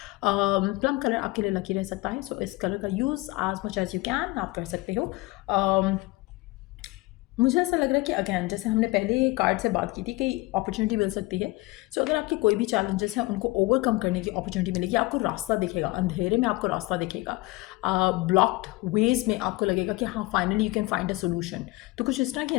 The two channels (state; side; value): quieter; right; 21.2 dB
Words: Plum colour आपके लिए लकी रह सकता है. सो इस कलर का use as much as you can आप कर सकते हो. मुझे ऐसा लग रहा है कि अगैन जैसे हमने पहले कार्ड से बात की थी कि अपॉर्चुनिटी मिल सकती है. सो अगर आपके कोई भी चैलेंजेस हैं उनको ओवरकम करने की अपॉर्चुनिटी मिलेगी. आपको रास्ता दिखेगा, अंधेरे में आपको रास्ता दिखेगा, ब्लॉक्ड वेज में आपको लगेगा कि हाँ finally you can find a solution. तो कुछ इस तरह की